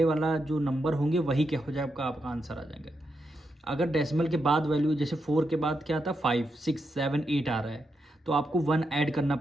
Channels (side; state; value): both; normal; correlation 0.84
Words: वाला जो नंबर होंगे वही क्या हो जाएगा आपका आंसर आ जाएगा। अगर डेसिमल के बाद वैल्यू जैसे 4 के बाद क्या था 5 6 7 8 आ रहा है तो आपको 1 ऐड करना